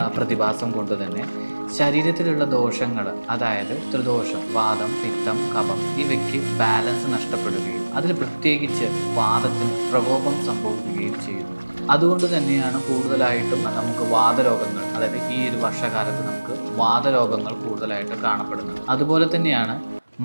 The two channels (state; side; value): inverted; both; correlation -1.00